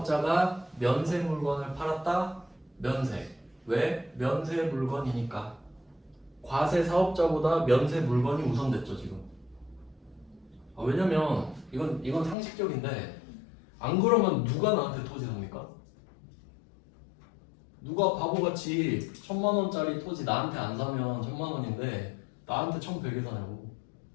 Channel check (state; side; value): drops out; right; at 12.4 s